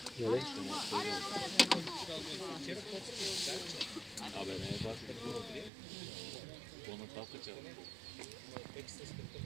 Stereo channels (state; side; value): drops out; left; at 5.7 s